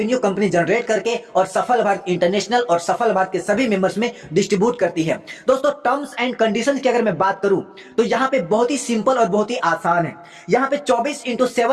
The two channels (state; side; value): identical; both; correlation 1.00